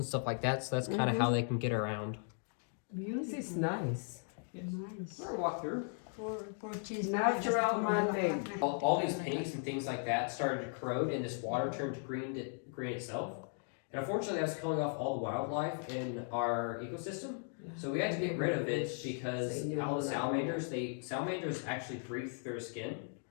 stuff like that. So that's kind of how they can get around. This is nice. Nice. We're gonna walk through. Natural man-made. All these paints and things like that started to corrode, and this water turned green itself. And unfortunately, that's killing off all the wildlife in our ecosystem. So we had to get rid of it because all the salamanders actually breathe through their skin.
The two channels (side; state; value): right; silent; 53 dB below the other